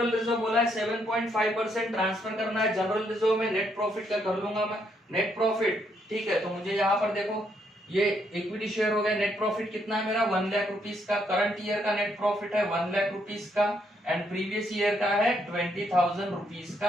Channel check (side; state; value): both; normal; correlation 0.74